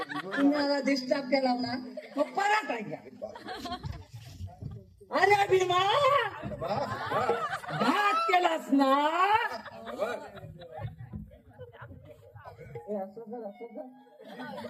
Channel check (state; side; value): identical; both; correlation 1.00